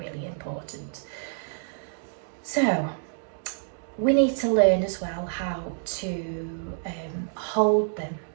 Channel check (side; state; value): left; silent; digital silence